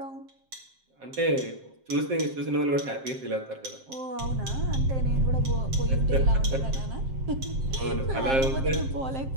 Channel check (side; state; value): left; late; 7.6 ms